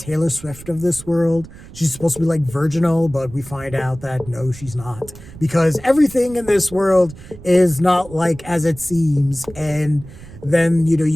Swift of this world. She's supposed to be like virginal, but we find out that no, she's not. Because everything in this world is not like as it seems. And then,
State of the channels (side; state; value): right; noise; rumble, 18 dB below the sound